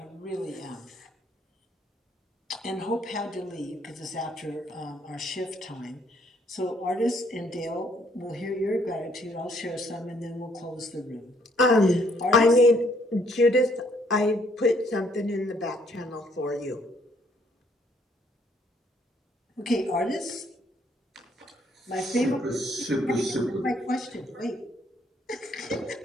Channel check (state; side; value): normal; both; correlation 0.67